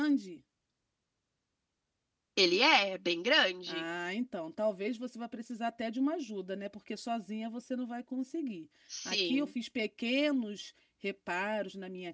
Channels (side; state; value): both; identical; correlation 1.00